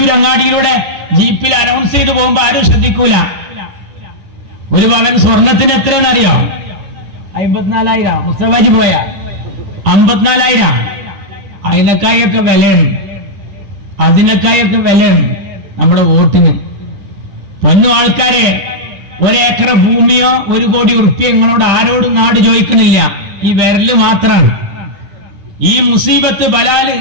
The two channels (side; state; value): left; late; 10 ms